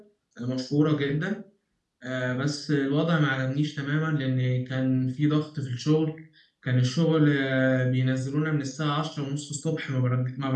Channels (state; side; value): identical; both; correlation 1.00